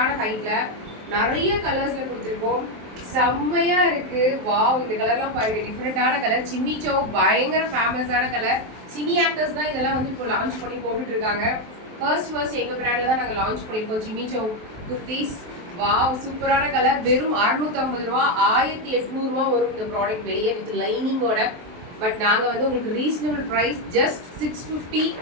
ஹைட்ல நிறைய கலர்ஸ்ல கொடுத்துருக்கோம். செம்மையா இருக்கு. வாவ், இந்த கலர்லாம் பாருங்க, டிஃப்ரெண்டான கலர். சிம்மிச்சோ பயங்கர ஃபேமஸான கலர். சினி ஆக்டர்ஸ் தான் இதெல்லாம் வந்து இப்போ லான்ச் பண்ணி போட்டுட்டு இருக்காங்க. ஃபர்ஸ்ட் எங்க பிராண்ட்ல தான் நாங்க லான்ச் பண்ணிருக்கோம் சிம்மிச்சோ குர்த்திஸ். வாவ், சூப்பரான கலர். வெறும் 650 ரூபா, 1800 ரூபா வரும் இந்த ப்ராடக்ட் வெளியே வித் லைனிங்கோட. பட் நாங்க வந்து உங்களுக்கு ரீசனபிள் பிரைஸ் ஜஸ்ட் 650,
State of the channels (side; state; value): left; late; 23 ms